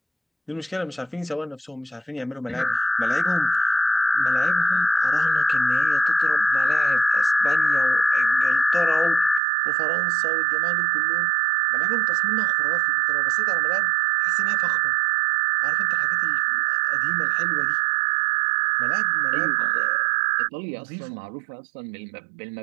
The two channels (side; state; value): left; drops out; at 9.4 s